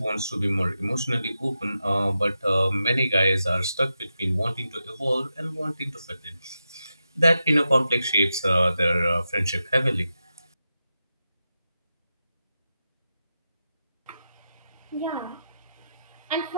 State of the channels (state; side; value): inverted; both; correlation -0.89